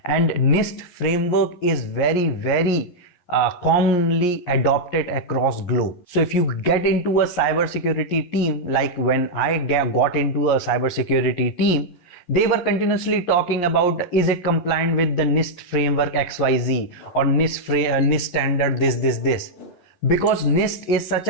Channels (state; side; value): late; right; 11 ms